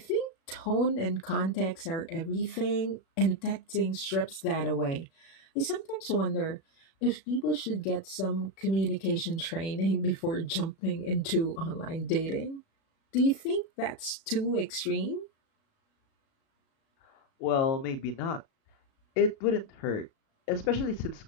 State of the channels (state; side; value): late; right; 36 ms